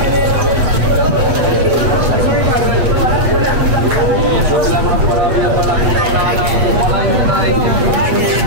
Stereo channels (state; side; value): late; left; 8.1 ms